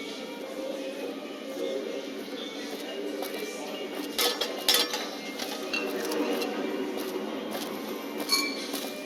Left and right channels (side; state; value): both; identical; correlation 1.00